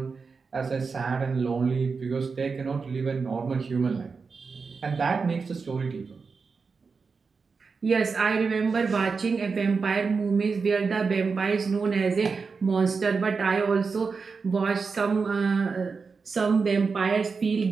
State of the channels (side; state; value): left; quieter; 4.9 dB